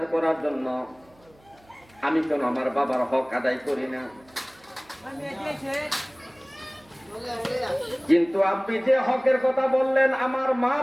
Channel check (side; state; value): right; noise; hum, 30 dB below the sound